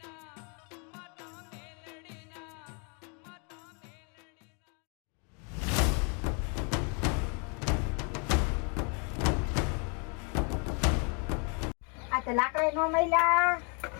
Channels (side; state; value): right; quieter; 36.4 dB